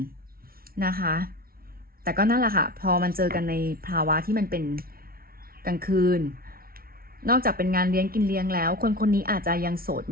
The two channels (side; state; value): left; late; 0.43 ms